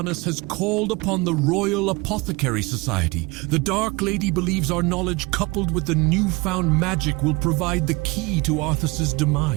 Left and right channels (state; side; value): quieter; left; 24.4 dB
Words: has called upon the Royal Apothecary Society. The Dark Lady believes our knowledge coupled with the newfound magic will provide the key to Arthas's